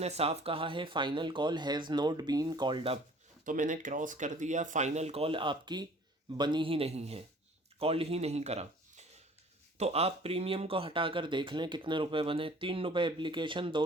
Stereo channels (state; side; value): normal; both; correlation 0.51